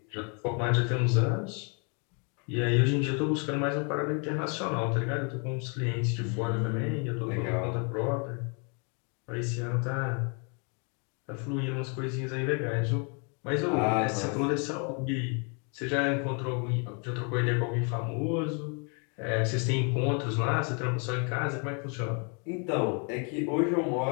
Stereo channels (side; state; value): right; quieter; 36.8 dB